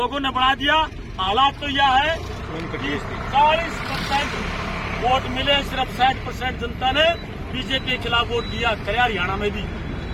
ने बढ़ा दिया। हालात तो यह है कि 40% वोट मिले, सिर्फ 60% जनता ने बीजेपी के खिलाफ वोट दिया, करे हरियाणा में भी।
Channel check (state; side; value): identical; both; correlation 1.00